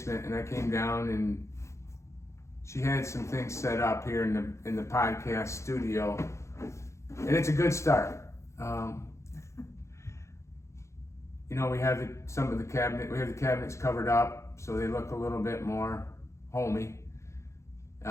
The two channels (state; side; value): late; right; 0.14 ms